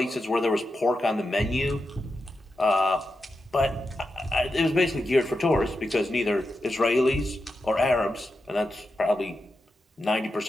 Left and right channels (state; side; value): normal; both; correlation 0.88